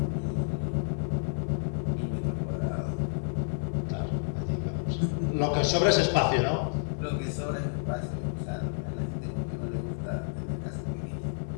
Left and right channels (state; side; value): silent; right; digital silence